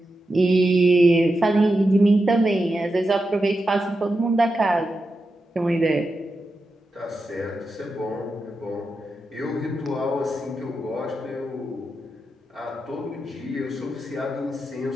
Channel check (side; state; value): both; normal; correlation 0.89